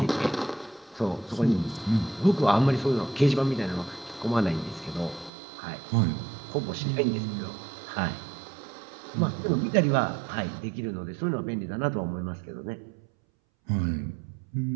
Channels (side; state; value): left; drops out; at 5.3 s